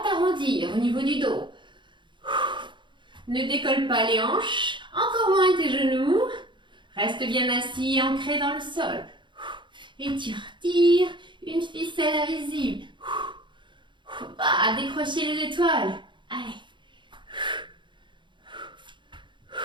t'arrondir au niveau du dos. Ne décolle pas les hanches. Encore moins tes genoux. Reste bien assis, ancré dans le sol. Étire, tire. Une ficelle invisible. Faut pas décrocher les étoiles. Allez.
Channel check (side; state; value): left; late; 0.23 ms